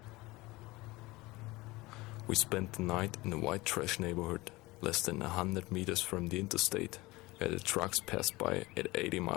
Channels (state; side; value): quieter; right; 21.2 dB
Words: We spent the night in a white trash neighborhood less than 100 meters from the interstate, where the trucks passed by at 80